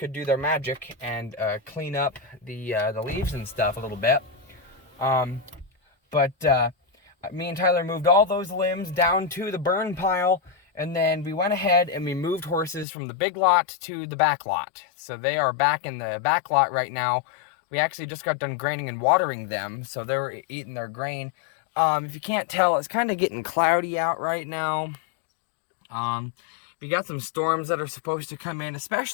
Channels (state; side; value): drops out; right; at 12.9 s